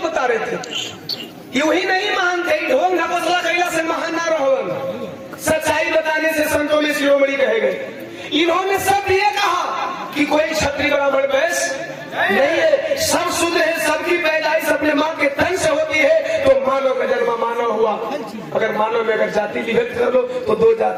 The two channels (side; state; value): both; identical; correlation 1.00